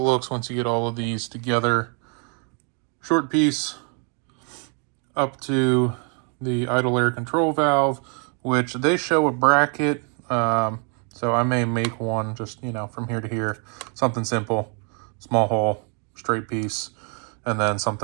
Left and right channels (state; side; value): quieter; left; 38.7 dB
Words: looks once you get all of these together. Short piece up to the idle air control valve, which they show a bracket. So I may make one just, you know, from here to here, something simple, small hole, straight piece, and then